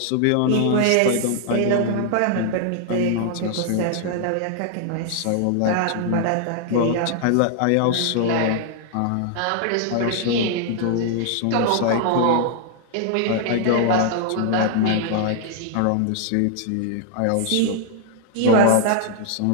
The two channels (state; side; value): different; both; correlation 0.00